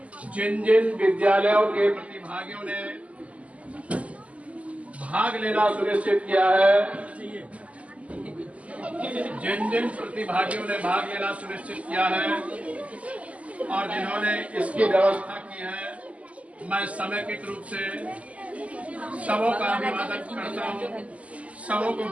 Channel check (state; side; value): late; left; 0.067 ms